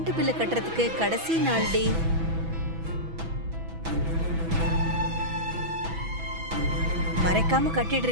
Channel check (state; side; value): late; left; 6.1 ms